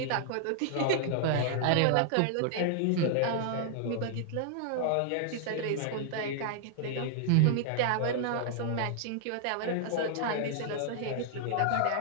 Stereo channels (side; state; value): both; different; correlation -0.01